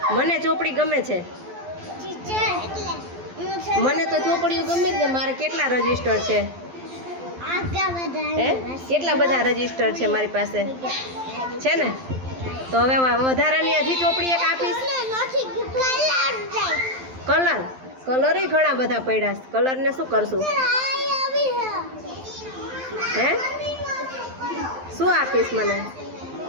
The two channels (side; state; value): left; late; 12 ms